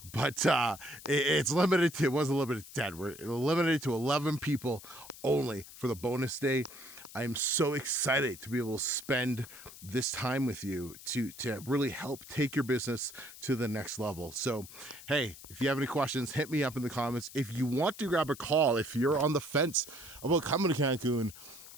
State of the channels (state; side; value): noise; left; hiss, 17 dB below the sound